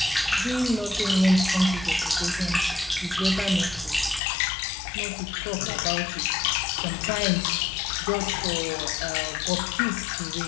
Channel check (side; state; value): right; drops out; at 4.2 s